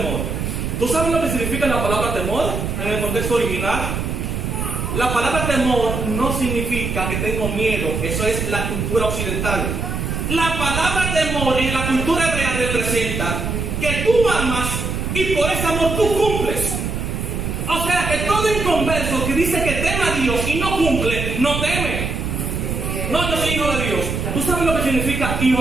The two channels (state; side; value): noise; right; rumble, 3 dB below the sound